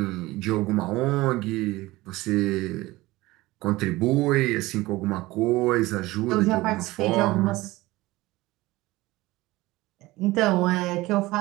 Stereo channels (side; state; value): left; quieter; 19.3 dB